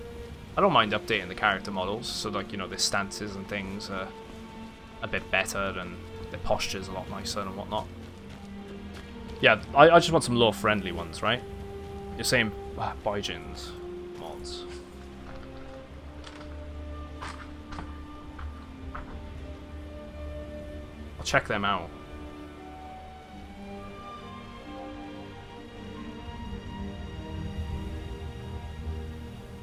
I don't mind updating the character models, so like, you know, their stances and things are a bit better, and their posture's a lot nicer and whatnot. Yeah, I just want some lore-friendly ones, right? You're saying Baijins mods. I'll check them out.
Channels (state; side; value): identical; both; correlation 1.00